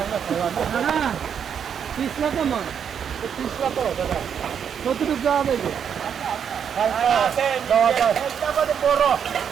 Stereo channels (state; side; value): quieter; left; 7.8 dB